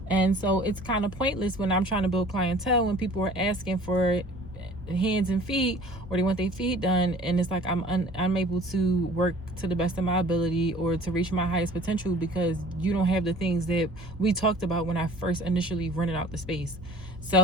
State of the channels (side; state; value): both; normal; correlation 0.48